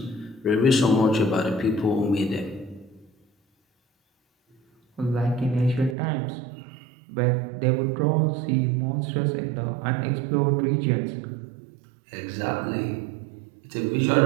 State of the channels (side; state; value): left; drops out; at 6.0 s